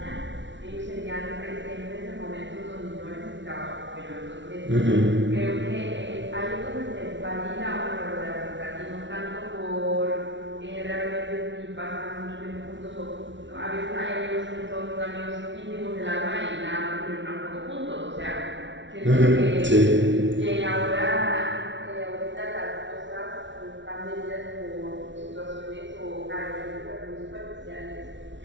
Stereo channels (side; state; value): left; late; 0.54 ms